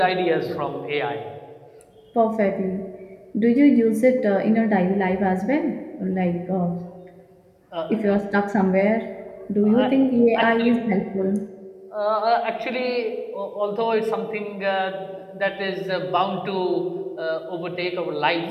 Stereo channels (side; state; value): both; identical; correlation 1.00